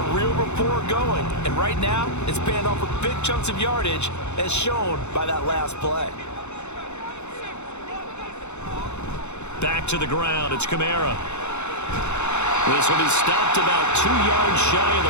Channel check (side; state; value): right; late; 0.82 ms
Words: real rapport going, and right now it's paying off with big chunks of yardage as shown by that last play. Back to the ground, it's Kamara. This one is stopped about 2 yards shy of the